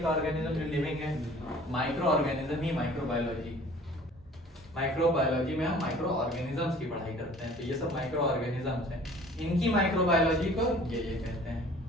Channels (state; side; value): normal; both; correlation 0.49